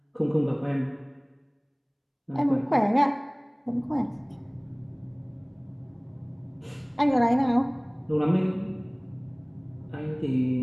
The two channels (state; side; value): identical; both; correlation 1.00